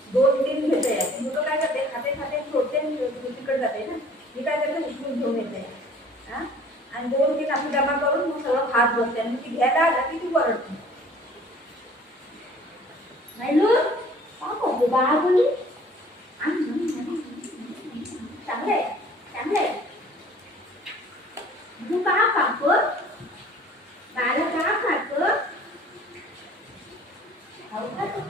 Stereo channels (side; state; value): both; normal; correlation 0.51